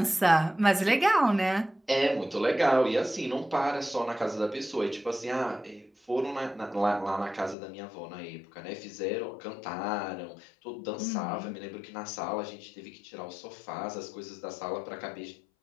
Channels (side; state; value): right; drops out; at 7.6 s